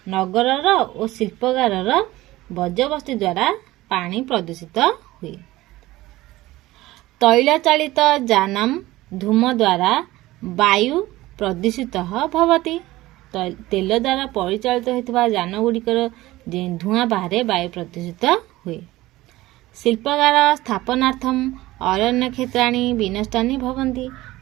नगरर और शिल्पकारर वर्ज्यवस्तु द्वारा पानी प्रदूषित हुए। तैल चालित जानम धूम द्वारा वायु प्रदूषित भवति। तेल द्वारा परिचालित होता जान गुड़िकर धूआं बाहर वायु प्रदूषित हुए। शिल्पकार स्थापनार्थम अरण्य क्षेत्राणि विनष्टानि भवन्ति।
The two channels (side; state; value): left; quieter; 17.7 dB